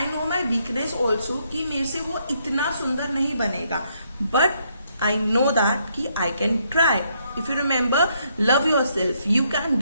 know my weakness also कि मेरे से वो इतना सुंदर नहीं बनेगा, बट I know that कि I can try. If you remember, love yourself. You can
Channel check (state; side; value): inverted; both; correlation -0.73